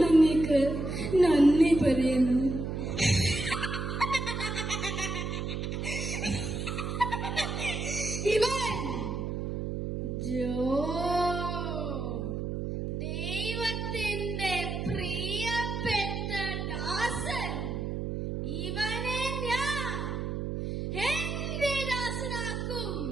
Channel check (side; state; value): right; noise; hum, 3 dB below the sound